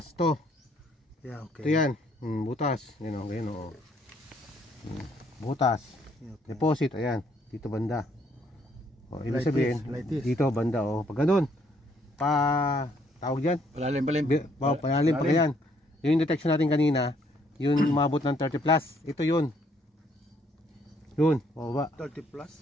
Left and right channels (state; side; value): normal; both; correlation 0.68